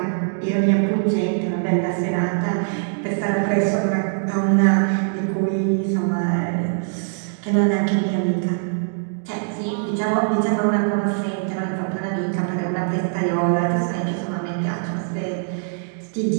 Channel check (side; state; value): left; silent; digital silence